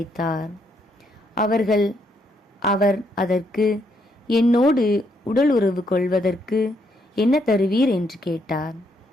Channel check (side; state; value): both; normal; correlation 0.74